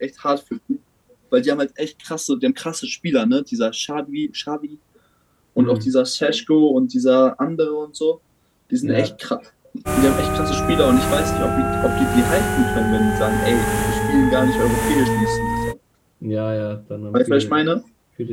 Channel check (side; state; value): both; identical; correlation 1.00